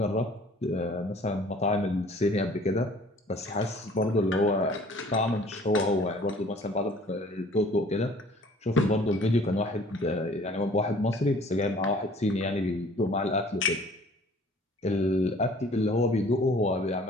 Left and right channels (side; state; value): both; normal; correlation 0.53